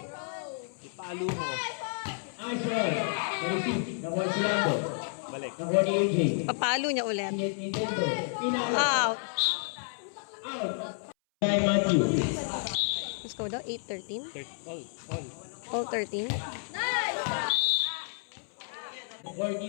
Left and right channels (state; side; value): silent; right; 57 dB below the other